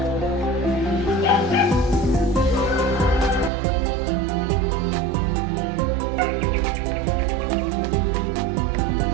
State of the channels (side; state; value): left; drops out; at 3.5 s